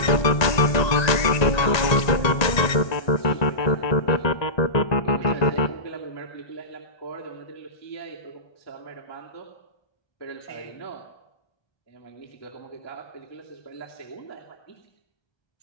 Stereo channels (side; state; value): right; late; 1.9 ms